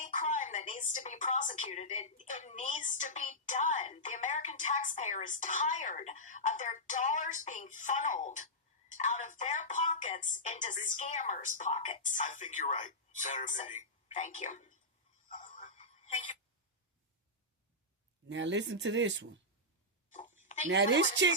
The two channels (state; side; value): normal; both; correlation -0.12